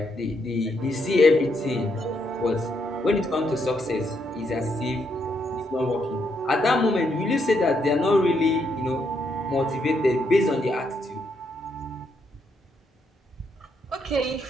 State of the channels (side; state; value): both; normal; correlation 0.77